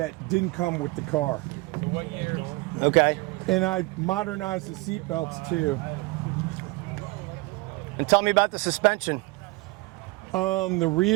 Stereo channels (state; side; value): quieter; left; 23.7 dB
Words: didn't come with the car. Okay. And I modernized the seat belts too. And tell me about the suspension. The